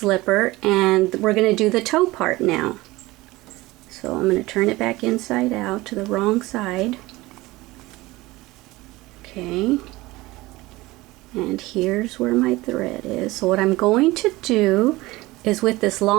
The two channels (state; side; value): quieter; left; 19.9 dB